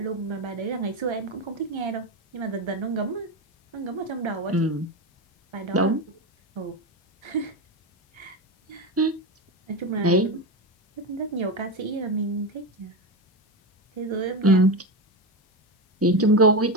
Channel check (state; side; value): normal; both; correlation 0.16